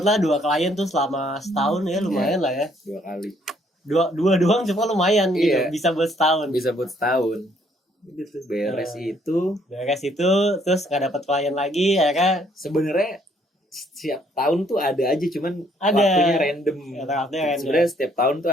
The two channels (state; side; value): normal; both; correlation 0.66